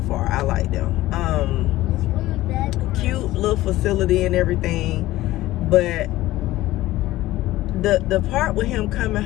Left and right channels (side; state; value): right; quieter; 16.5 dB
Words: I like them. Cute little facility and everything, but the part with him coming